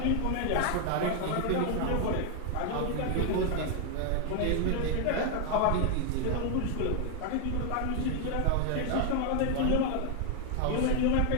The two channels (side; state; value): both; different; correlation 0.00